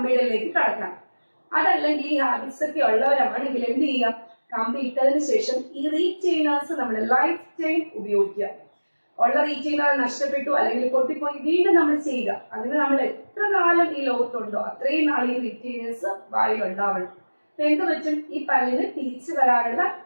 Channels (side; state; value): both; inverted; correlation -1.00